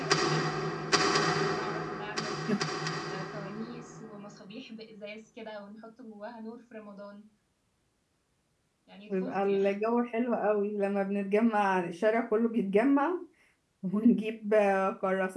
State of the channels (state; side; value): identical; both; correlation 1.00